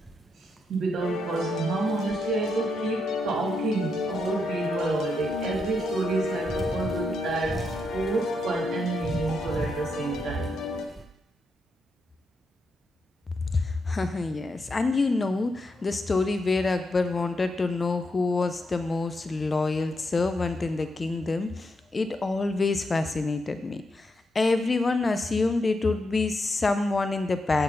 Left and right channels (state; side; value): normal; both; correlation 0.82